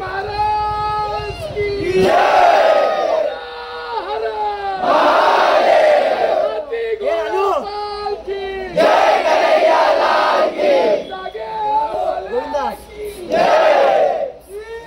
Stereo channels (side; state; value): both; identical; correlation 1.00